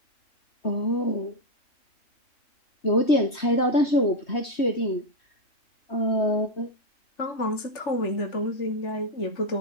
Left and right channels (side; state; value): right; late; 3.2 ms